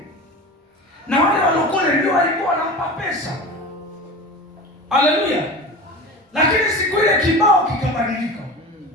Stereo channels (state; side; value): normal; both; correlation 0.32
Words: na wale walokole ndio walikuwa wanampa pesa. Haleluya! Lakini siku ile kibao kikabadilika.